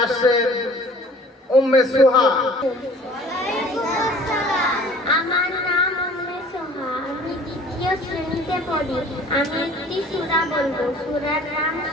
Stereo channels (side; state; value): both; normal; correlation 0.49